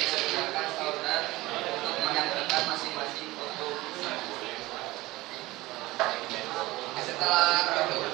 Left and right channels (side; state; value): left; quieter; 19.3 dB